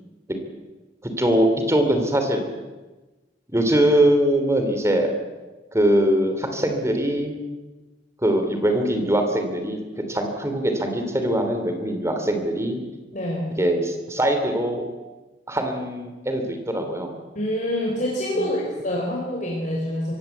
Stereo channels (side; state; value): both; normal; correlation 0.66